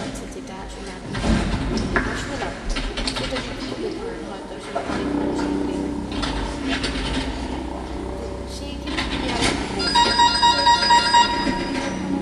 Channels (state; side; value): identical; both; correlation 1.00